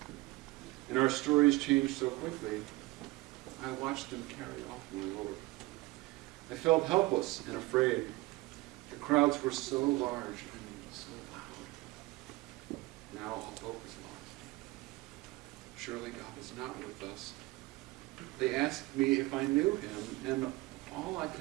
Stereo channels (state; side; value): quieter; left; 21.0 dB